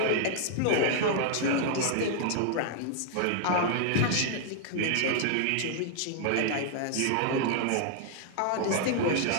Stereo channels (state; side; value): different; both; correlation 0.00